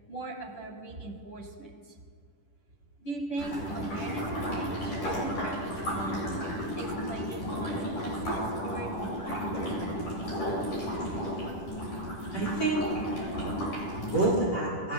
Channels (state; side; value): late; right; 10 ms